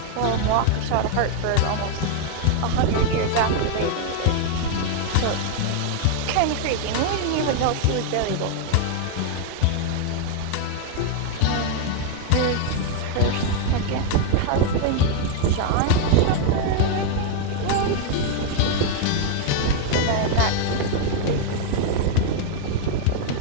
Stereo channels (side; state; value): both; different; correlation 0.00